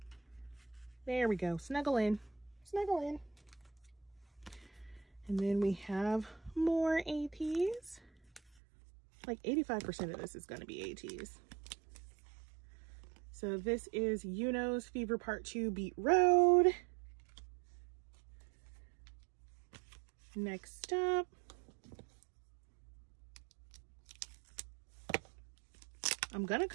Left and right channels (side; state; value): left; drops out; at 8.4 s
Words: There we go. Snuggle in. Snuggle in. And then we have more Ateez. Like 85% of this is going to be Ateez. So this is Yuno's Fever Part 2 Beat Road. Next up, I'm gonna